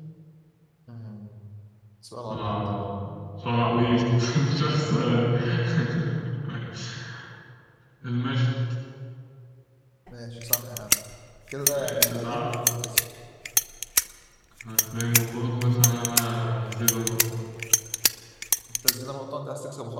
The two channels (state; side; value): identical; both; correlation 1.00